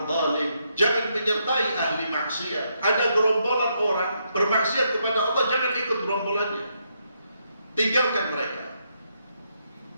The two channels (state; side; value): inverted; both; correlation -0.78